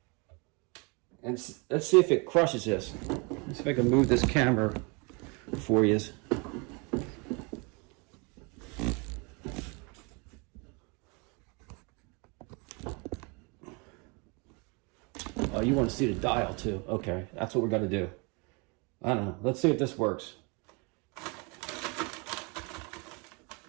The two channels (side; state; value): left; quieter; 30.9 dB